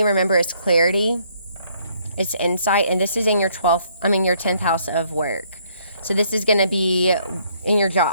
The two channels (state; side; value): inverted; both; correlation -0.67